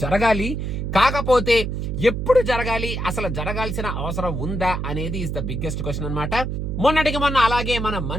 జరగాలి. కాకపోతే ఎప్పుడు జరగాలి, అసలు జరగాల్సిన అవసరం ఉందా అనేది ఇస్ ద బిగ్గెస్ట్ క్వశ్చన్ అనమాట. మొన్నటికి మొన్న అలాగే మన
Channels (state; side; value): noise; right; hum, 3 dB below the sound